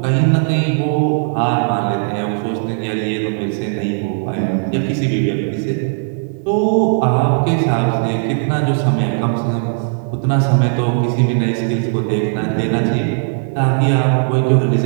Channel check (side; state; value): left; silent; 62 dB below the other